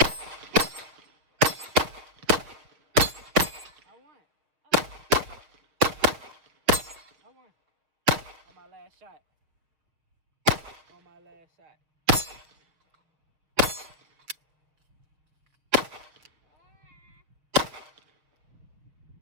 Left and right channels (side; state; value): left; late; 6.4 ms